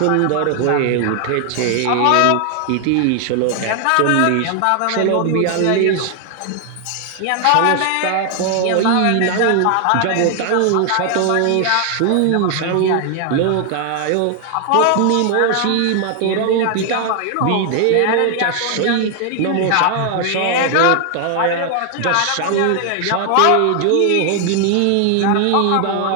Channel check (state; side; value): different; both; correlation 0.00